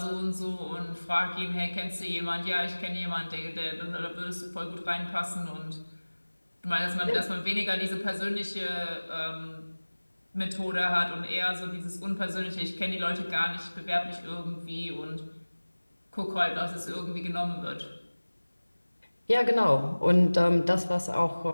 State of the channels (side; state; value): both; inverted; correlation -1.00